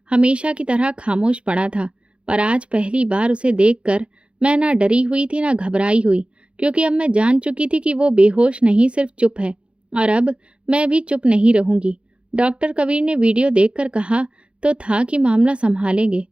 हमेशा की तरह खामोश पड़ा था, पर आज पहली बार उसे देखकर मैं ना डरी हुई थी ना घबराई हुई, क्योंकि अब मैं जान चुकी थी कि वो बेहोश नहीं, सिर्फ चुप है। और अब मैं भी चुप नहीं रहूंगी। डॉक्टर कबीर ने वीडियो देखकर कहा तो था कि मामला संभालेंगे,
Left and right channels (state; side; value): late; left; 0.058 ms